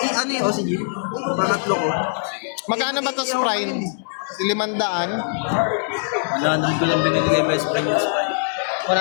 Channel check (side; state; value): right; silent; 63 dB below the other